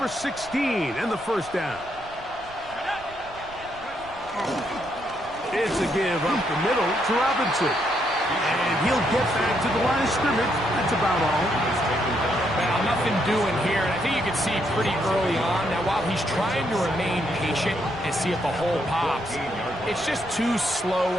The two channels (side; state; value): right; noise; rumble, 21 dB below the sound